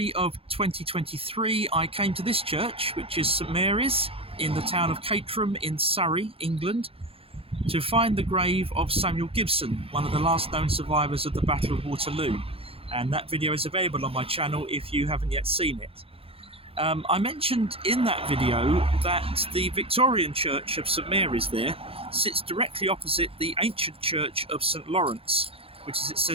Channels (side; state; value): left; late; 0.27 ms